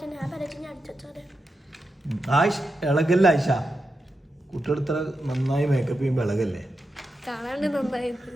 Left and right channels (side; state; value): both; normal; correlation 0.88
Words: ആയിഷ ഇളകല്ലേ? ആയിഷ കുട്ടികൾ ഇത്ര നന്നായി മേക്കപ്പ് ചെയ്യുമ്പോ ഇളകല്ലേ?